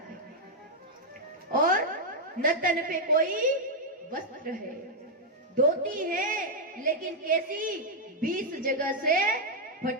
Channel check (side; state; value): both; normal; correlation -0.02